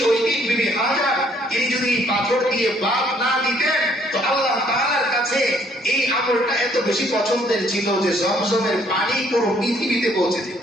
ওই দিন বিবি হাজার তিনি যদি পাথর দিয়ে বাদ না দিতেন, তো আল্লাহ তাআলার কাছে এই আমলটা এত বেশি পছন্দের ছিল যে জমজমের পানি পুরো পৃথিবীতে পৌঁছে যেত,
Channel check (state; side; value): normal; both; correlation 0.64